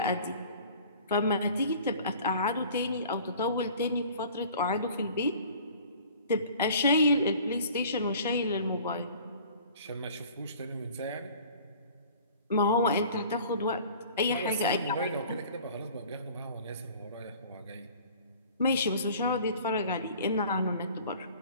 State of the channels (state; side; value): inverted; both; correlation -0.47